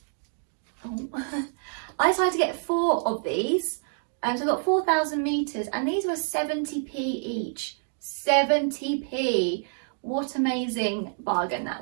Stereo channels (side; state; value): left; silent; digital silence